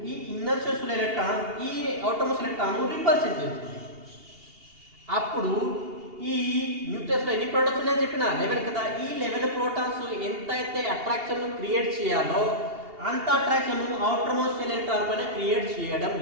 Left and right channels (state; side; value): late; left; 2.8 ms